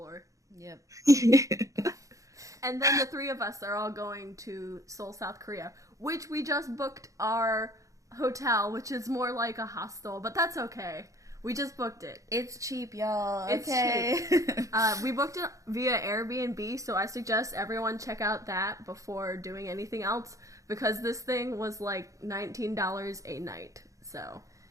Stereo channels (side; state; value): left; late; 0.16 ms